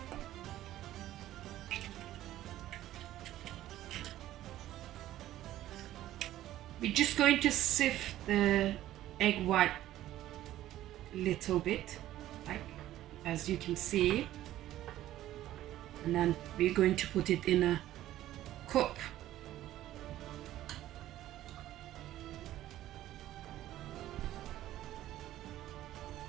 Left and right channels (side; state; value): left; quieter; 13.8 dB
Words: We're just going to sift the egg white a little bit, like as you can see, and then we're going to put it in a cup.